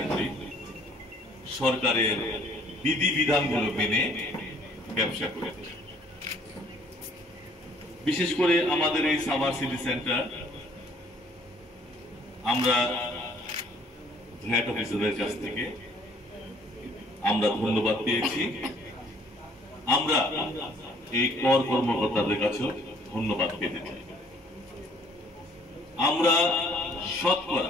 করি সরকারের বিধিবিধানগুলো মেনে ব্যবসা করে। বিশেষ করে আমাদের এই সাভার সিটি সেন্টার আমরা ভ্যাট অফিসারের কাছ থেকে আমরা ধন্যবাদ পেয়েছি। আমরা এই কর কর্মকর্তাদের কাছে ধন্যবাদ পেতে চাই। আমরা শতকরা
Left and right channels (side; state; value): both; normal; correlation 0.59